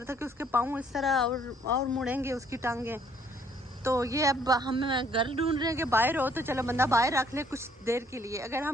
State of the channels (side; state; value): both; normal; correlation 0.64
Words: था कि उसके पाँव इस तरह और मुड़ेंगे उसकी टांगें। तो ये अब हम घर ढूंढ रहे हैं कि बाहर हो तो चलो बंदा बाहर रख ले कुछ देर के लिए। अगर